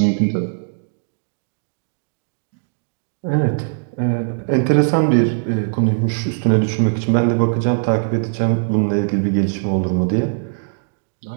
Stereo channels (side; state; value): left; silent; digital silence